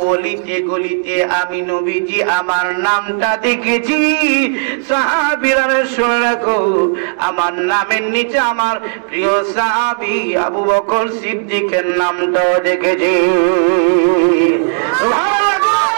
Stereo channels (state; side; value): silent; left; digital silence